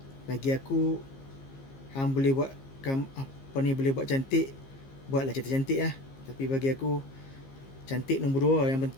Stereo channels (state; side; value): late; right; 15 ms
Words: Bagi aku, hang boleh buat apa ni, boleh buat cantik, buatlah cantik-cantik lah. Tapi bagi aku, cantik nombor 2. Yang